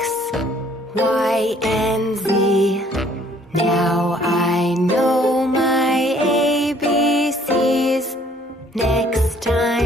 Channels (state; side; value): normal; both; correlation 0.60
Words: Y, and Z. Now I know my ABCs. Next